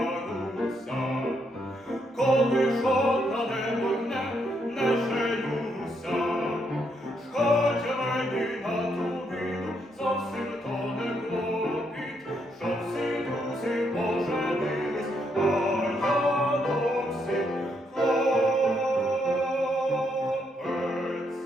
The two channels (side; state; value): both; normal; correlation 0.76